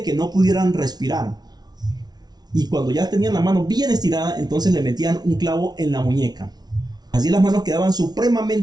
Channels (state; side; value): late; left; 0.19 ms